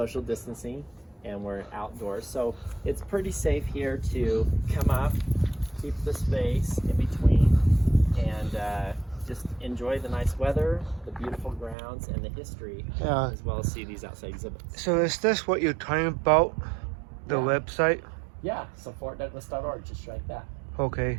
distancing, and we're outdoors. So it's pretty safe here to come up, keep the space in between, and just enjoy the nice weather, the beautiful grounds, and the history, as well as see these outside exhibits. So is this what you're talking about, the website? Yeah, so fortdouglas.org, just like that. Okay.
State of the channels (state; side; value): drops out; left; at 11.8 s